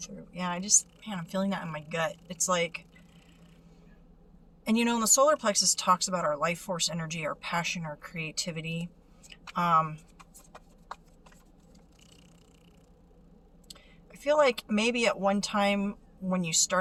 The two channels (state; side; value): identical; both; correlation 1.00